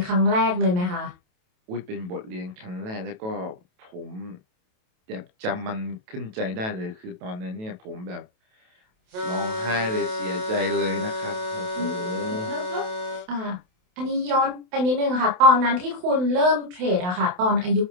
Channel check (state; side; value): late; left; 28 ms